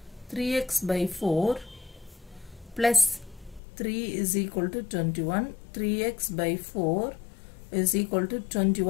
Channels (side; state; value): right; drops out; at 3.6 s